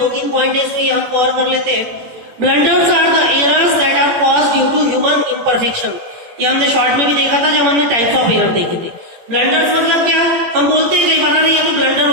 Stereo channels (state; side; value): late; left; 17 ms